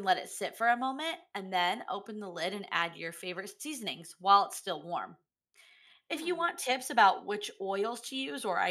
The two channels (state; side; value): identical; both; correlation 1.00